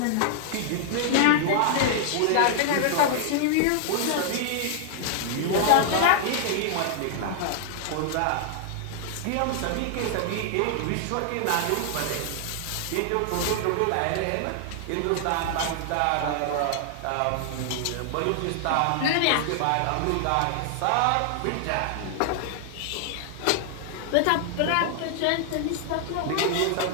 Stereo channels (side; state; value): both; different; correlation 0.00